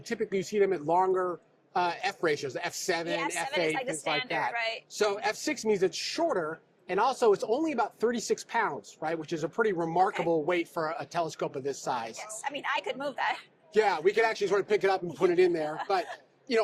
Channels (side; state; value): both; identical; correlation 1.00